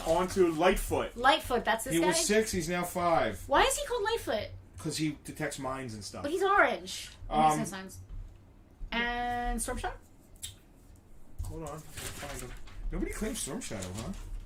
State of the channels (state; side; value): identical; both; correlation 1.00